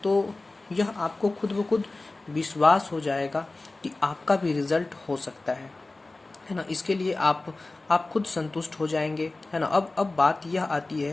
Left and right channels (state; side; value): quieter; right; 3.2 dB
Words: तो यह आपको खुद ब खुद विश्वास हो जाएगा कि आपका भी रिजल्ट हो सकता है ना। इसके लिए आप खुद संतुष्ट हो जाएंगे, है ना। अब बात यह आती है